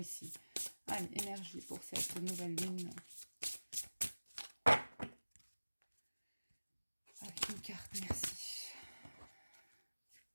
Allez, énergie pour cette nouvelle lune. Avec une carte, merci.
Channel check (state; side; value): inverted; both; correlation -1.00